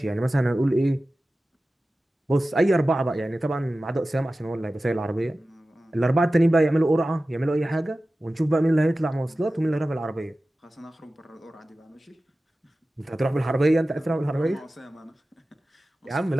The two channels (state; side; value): normal; both; correlation 0.95